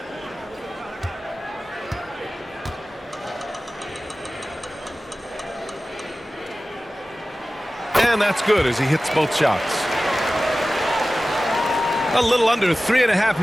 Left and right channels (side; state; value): both; normal; correlation 0.96